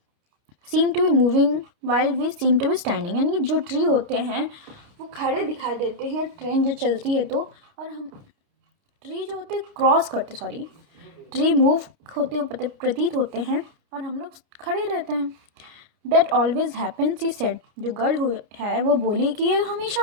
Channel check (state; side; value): late; left; 29 ms